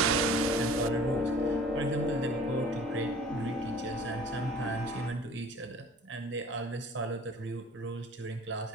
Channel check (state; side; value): normal; both; correlation 0.48